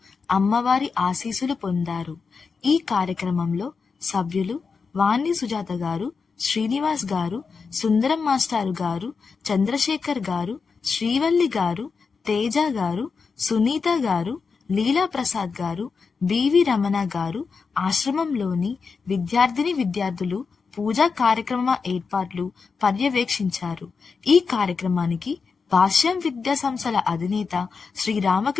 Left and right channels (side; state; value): right; quieter; 5.1 dB